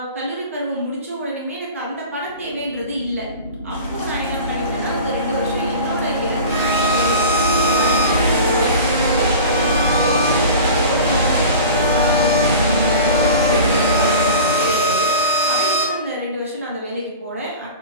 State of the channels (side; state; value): both; inverted; correlation -0.37